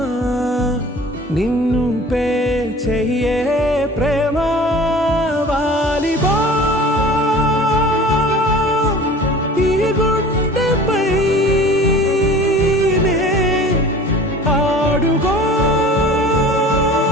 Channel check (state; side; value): normal; both; correlation 0.43